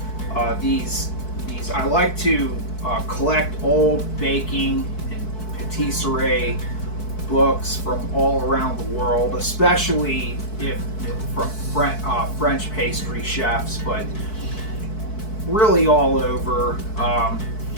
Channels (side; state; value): right; late; 4.6 ms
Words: these. I like to collect old baking and patisserie books from all around the world, especially from French pastry chefs, but really all over.